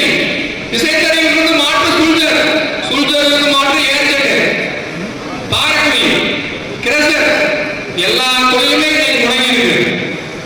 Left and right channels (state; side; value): identical; both; correlation 1.00